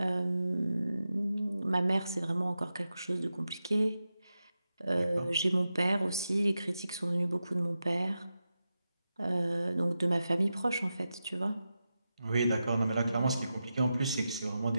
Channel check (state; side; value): inverted; both; correlation -0.90